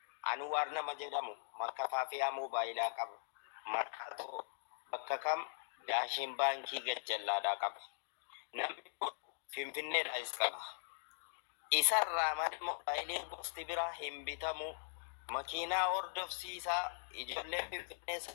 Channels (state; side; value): silent; right; digital silence